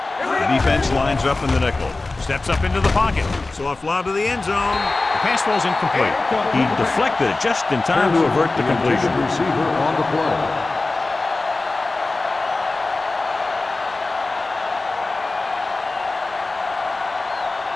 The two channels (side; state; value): right; quieter; 3.3 dB